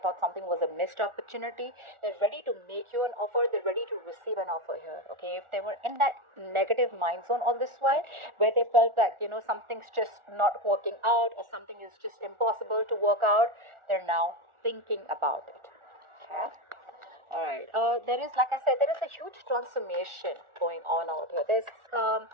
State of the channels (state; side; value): late; left; 1.4 ms